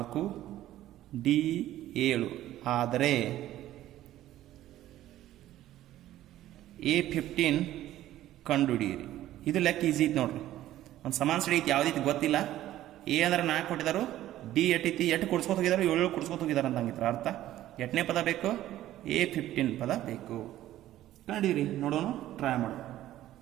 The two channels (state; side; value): quieter; left; 13.8 dB